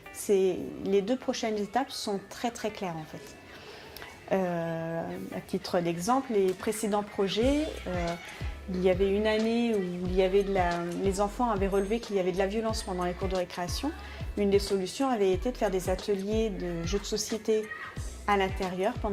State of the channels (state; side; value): identical; both; correlation 1.00